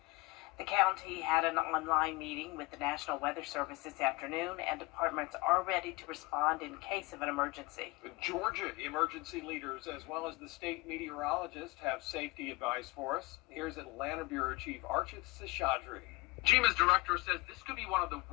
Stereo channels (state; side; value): quieter; right; 23.3 dB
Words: The county had an online meeting with the National Weather Service this afternoon, and departments are ready to respond in case of an emergency. Georgia emergency leaders as well as the state meteorologist have safety advice for us. Here's Atlanta Bureau Chief Archit Seshadri. GMA's director says this could be one of the